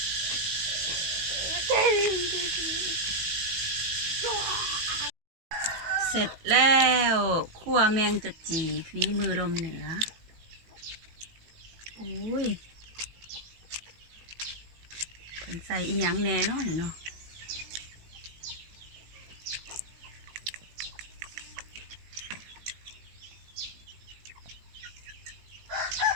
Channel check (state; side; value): late; left; 18 ms